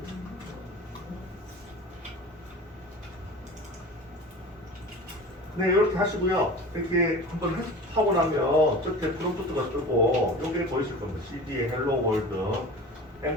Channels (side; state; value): both; normal; correlation 0.36